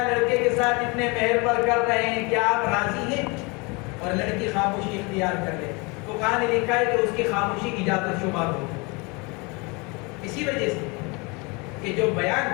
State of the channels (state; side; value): quieter; right; 28.5 dB